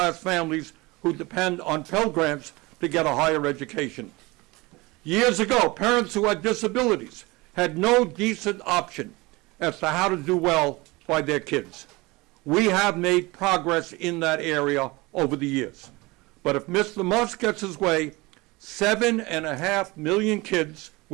families who depend on Pell Grants to get a higher education. Years ago, parents who had disabilities had no decent option as to how to do well by their kids. We have made progress in that area over the years. But if Mr. Musk gets his way, 7.5 million kids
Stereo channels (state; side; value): quieter; left; 23.0 dB